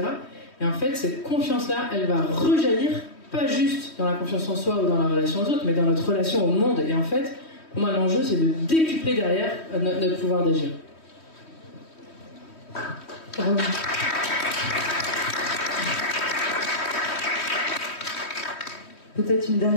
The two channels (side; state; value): right; late; 3.1 ms